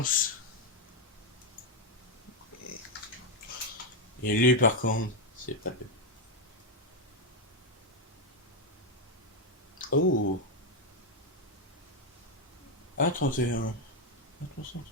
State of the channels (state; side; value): normal; both; correlation 0.03